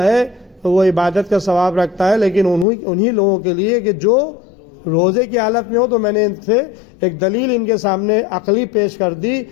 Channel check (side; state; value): right; drops out; at 2.7 s